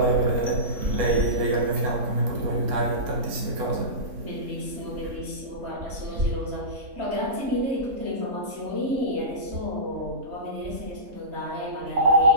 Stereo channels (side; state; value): left; late; 3.6 ms